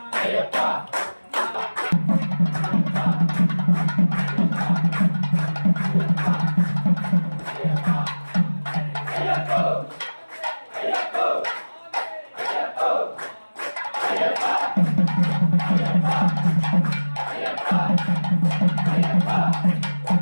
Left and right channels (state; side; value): inverted; both; correlation -1.00